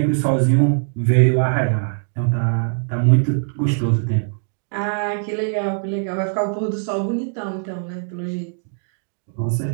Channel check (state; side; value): silent; left; digital silence